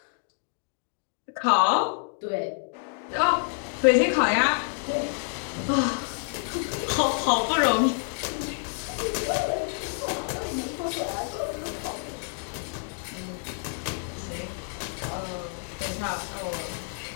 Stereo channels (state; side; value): silent; right; 56 dB below the other